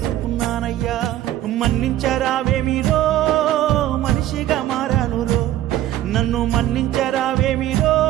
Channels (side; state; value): left; quieter; 13.5 dB